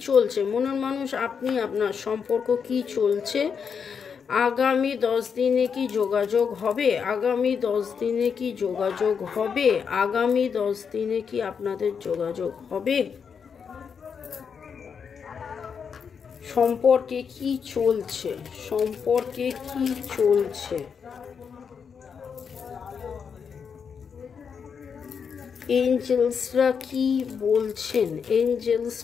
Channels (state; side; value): quieter; right; 6.5 dB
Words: চলছে, মনের মানুষ আপনি, আপনার সম্পর্ক কি চলছে, আগামী 10 দিনে কি যোগাযোগ হবে, আগামী 10 দিনে কি যোগাযোগ হবে, আগামী 10 দিনে কি আপনাদের যোগাযোগ হবে, সম্পর্কে কি চলছে, সম্পর্কে কি চলছে, এঞ্জেলসরা কি বলছেন,